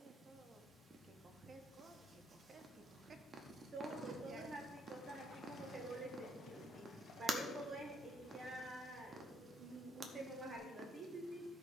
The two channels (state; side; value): normal; both; correlation 0.70